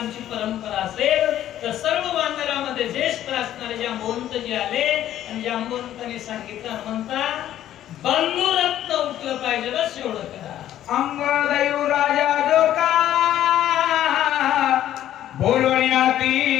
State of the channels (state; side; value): quieter; right; 12.1 dB